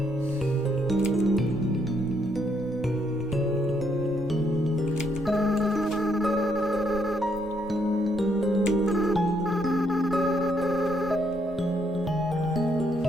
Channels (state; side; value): normal; both; correlation 0.73